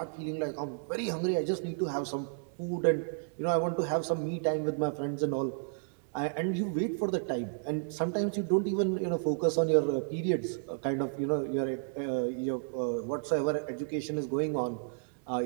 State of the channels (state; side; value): silent; left; digital silence